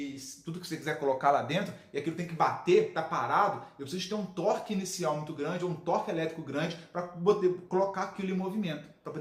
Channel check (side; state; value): both; identical; correlation 1.00